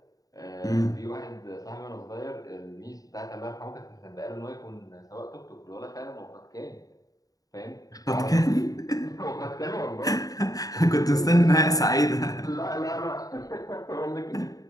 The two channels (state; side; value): late; right; 0.18 ms